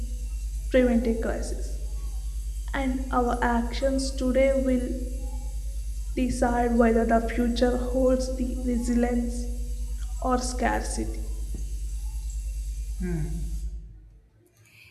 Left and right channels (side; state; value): both; identical; correlation 1.00